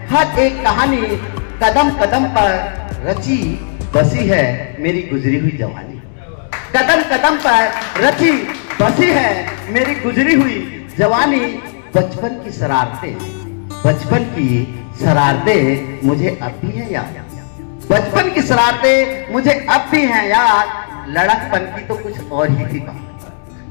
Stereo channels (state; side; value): silent; right; digital silence